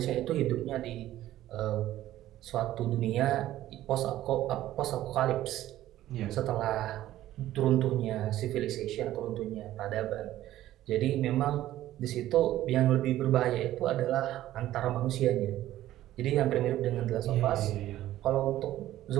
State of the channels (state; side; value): quieter; left; 14.0 dB